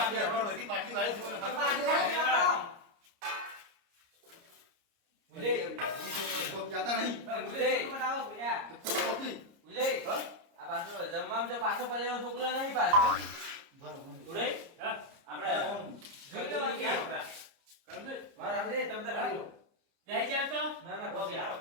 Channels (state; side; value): late; left; 30 ms